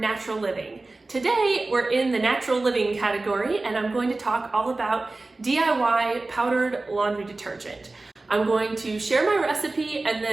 living. Today we're in the natural living category, and I'm going to talk all about DIY powdered laundry detergent. I'm going to share my recipe and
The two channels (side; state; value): left; quieter; 3.2 dB